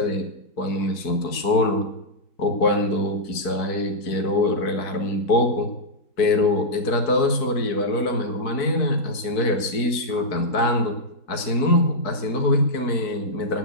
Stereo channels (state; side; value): late; right; 4.5 ms